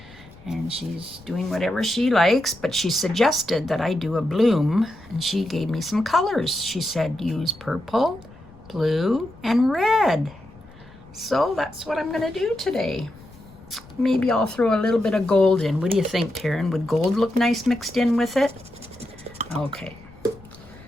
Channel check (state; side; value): noise; left; rumble, 23 dB below the sound